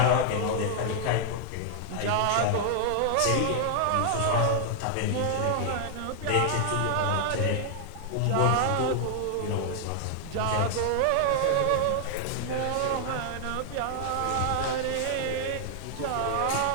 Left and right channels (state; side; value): different; both; correlation 0.00